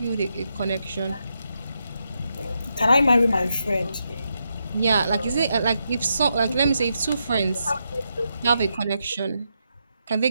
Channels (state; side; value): inverted; both; correlation -0.83